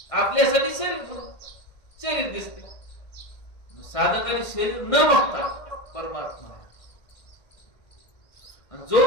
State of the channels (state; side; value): late; right; 1.6 ms